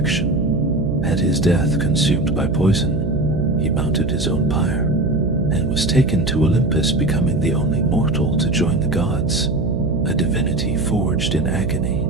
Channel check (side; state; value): right; noise; hum, 2 dB below the sound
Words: At his death, consumed by poison, he mounted his own pyre, and was taken to Olympus, becoming the only mortal to join the gods, a divinity forged in agony.